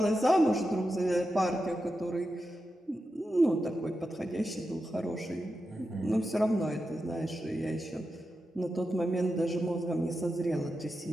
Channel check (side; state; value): both; normal; correlation 0.89